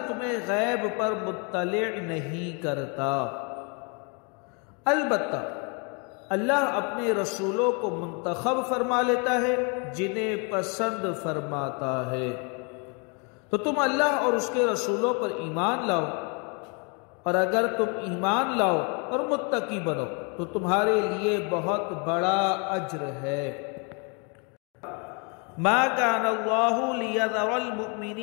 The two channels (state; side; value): quieter; right; 34.5 dB